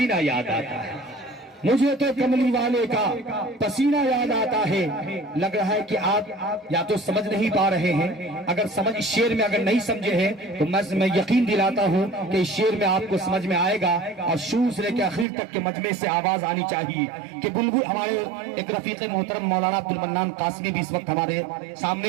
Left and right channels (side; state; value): left; drops out; at 15.2 s